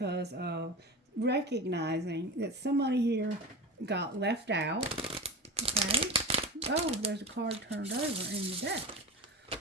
of recognizing that somebody here got left out. Okay. Oh, there's a card turned over in the deck.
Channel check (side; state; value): both; normal; correlation 0.29